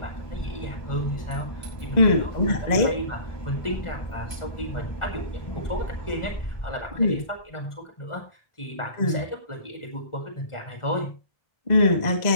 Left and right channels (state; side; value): late; right; 1.4 ms